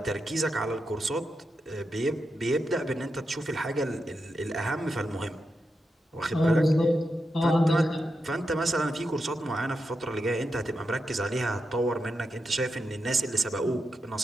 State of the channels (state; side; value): normal; both; correlation 0.87